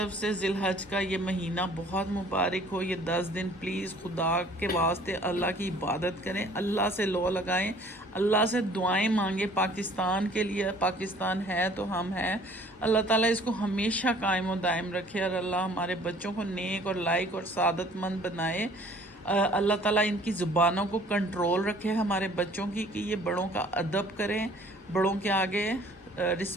سے ذی الحج کا یہ مہینہ بہت مبارک ہو. یہ 10 دن پلیز خدا کے واسطے اللہ کی عبادت کریں، اللہ سے لو لگائیں، اللہ سے دعائیں مانگیں پاکستان کے لیے. پاکستان ہے تو ہم ہیں. اللہ تعالیٰ اس کو ہمیشہ قائم و دائم رکھے، اور اللہ ہمارے بچوں کو نیک اور لائق اور سعادت مند بنائے. اللہ تعالیٰ ان کی زبانوں کو کنٹرول رکھے ہمارے بچوں کی، کہ یہ بڑوں کا ادب کریں، بڑوں کے آگے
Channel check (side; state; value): both; normal; correlation 0.54